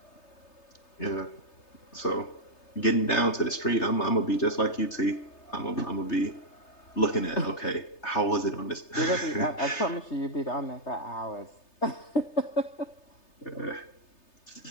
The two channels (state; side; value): late; right; 3.3 ms